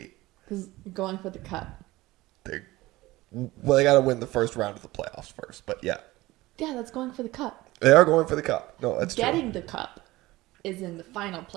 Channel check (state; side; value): quieter; left; 18.8 dB